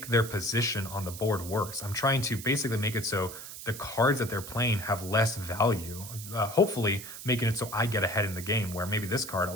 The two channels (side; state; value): right; noise; hiss, 11 dB below the sound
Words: their position on the board worse. I'm trying to basically make it so the cards that they're playing have less value, hopefully making it so I get ahead in the game, where maybe this card